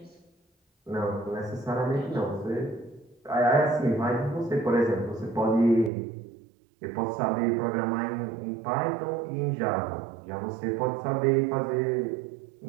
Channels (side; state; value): left; drops out; at 5.9 s